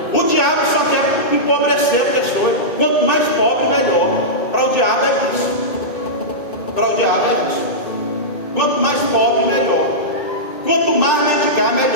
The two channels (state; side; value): late; right; 2.6 ms